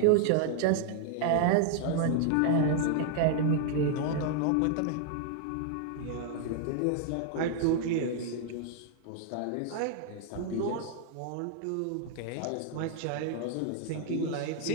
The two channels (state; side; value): different; both; correlation 0.00